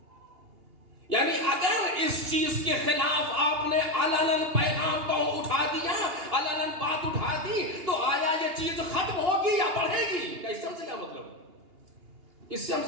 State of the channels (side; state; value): left; late; 2.8 ms